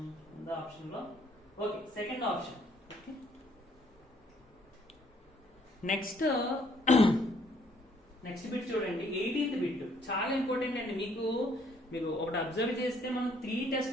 the option లో. Okay, second option. Next bit చూడండి, 18th బిట్ చాలా ఇంపార్టెంట్ అండి. మీరు ఒకటి అబ్జర్వ్ చేస్తే మనం 3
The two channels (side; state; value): both; normal; correlation 0.65